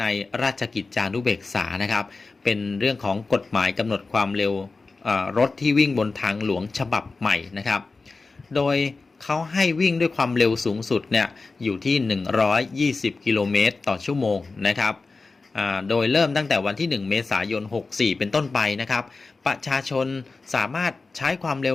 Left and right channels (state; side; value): quieter; right; 3.9 dB